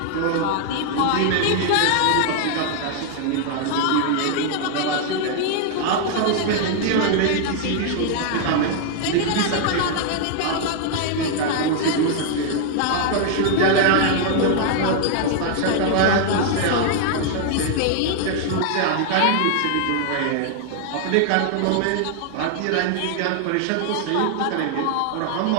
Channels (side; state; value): both; different; correlation 0.00